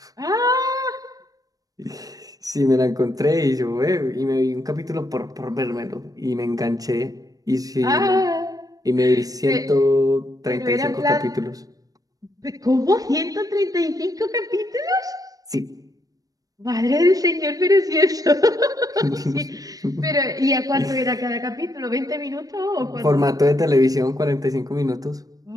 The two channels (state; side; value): late; left; 0.18 ms